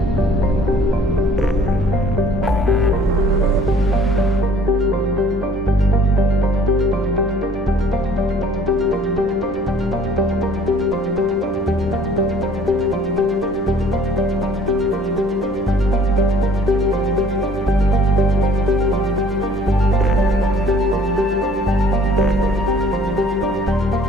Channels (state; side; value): normal; both; correlation 0.55